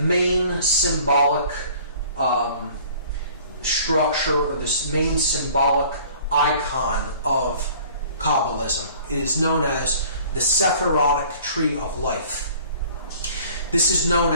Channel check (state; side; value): inverted; both; correlation -0.50